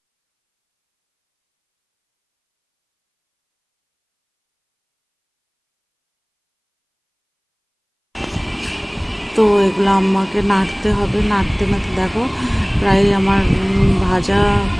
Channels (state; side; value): identical; both; correlation 1.00